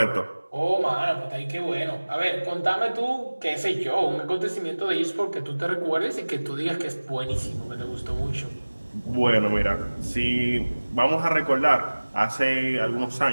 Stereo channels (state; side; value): inverted; both; correlation -1.00